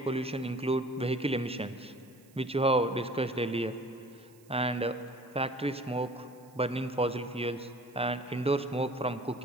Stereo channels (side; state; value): right; noise; hiss, 29 dB below the sound